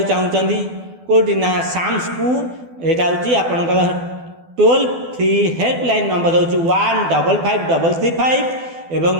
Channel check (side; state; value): left; late; 12 ms